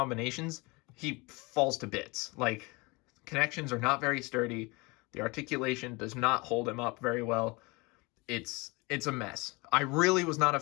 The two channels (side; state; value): right; quieter; 25.8 dB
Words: he falls to bits. Like, connections are not very sturdy. The articulation does not hold him up very well. It's a mess. I really was not a